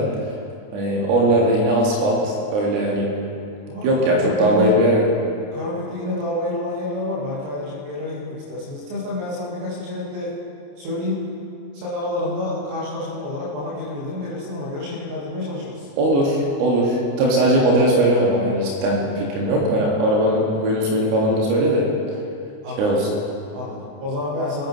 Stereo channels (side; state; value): left; late; 29 ms